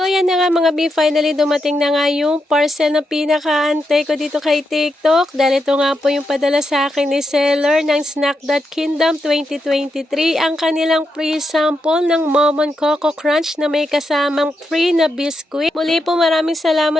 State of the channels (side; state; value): both; normal; correlation 0.84